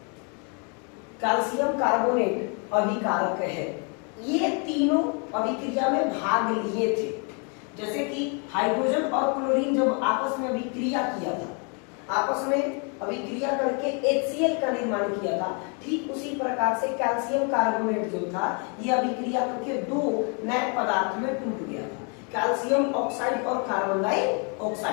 कैल्शियम कार्बोनेट अभिकारक है। ये तीनों अभिक्रिया में भाग लिए थे। जैसे कि हाइड्रोजन और क्लोरीन जब आपस में अभिक्रिया किया था, आपस में अभिक्रिया करके HCl का निर्माण किया था, ठीक उसी प्रकार से कैल्शियम कार्बोनेट जो था ये अभिक्रिया करके दो नए पदार्थ में टूट गया था, कैल्शियम ऑक्साइड और कार्बन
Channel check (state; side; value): quieter; right; 36.7 dB